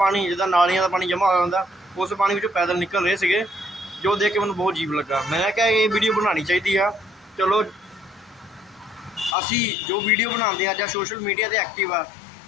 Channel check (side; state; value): right; drops out; at 9.3 s